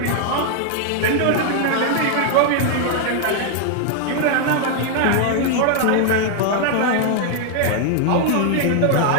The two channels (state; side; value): different; both; correlation 0.00